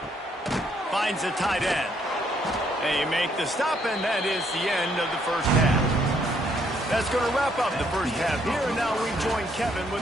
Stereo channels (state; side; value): normal; both; correlation 0.69